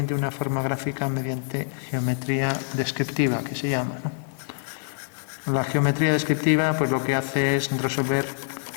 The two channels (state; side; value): silent; right; 60 dB below the other